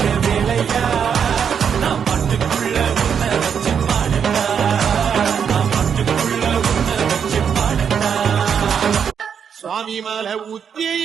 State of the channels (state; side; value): quieter; left; 7.4 dB